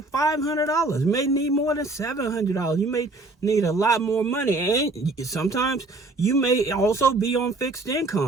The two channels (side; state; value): left; quieter; 3.1 dB